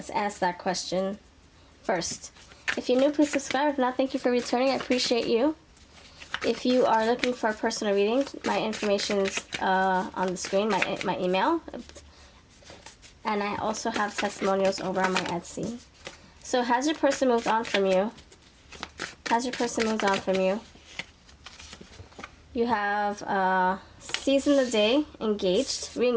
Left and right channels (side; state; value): both; identical; correlation 1.00